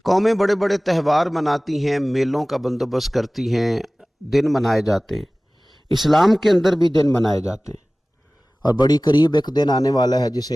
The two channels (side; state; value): both; normal; correlation 0.98